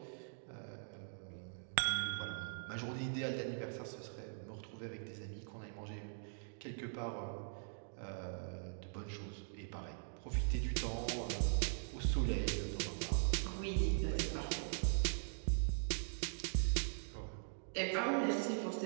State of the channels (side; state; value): left; silent; digital silence